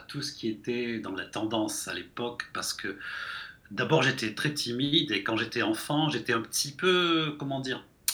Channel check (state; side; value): identical; both; correlation 1.00